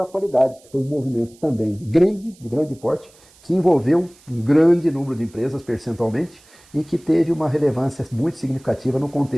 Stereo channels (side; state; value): right; noise; hiss, 28 dB below the sound